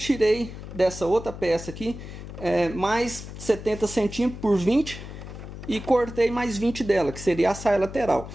dessa outra peça aqui mais 70 centímetros por 20 e cortei mais 20 dela, que seria a saia lateral.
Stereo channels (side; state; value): left; noise; hum, 11 dB below the sound